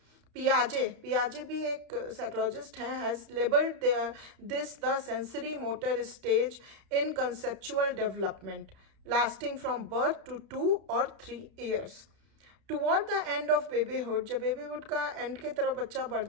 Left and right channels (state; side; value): late; left; 31 ms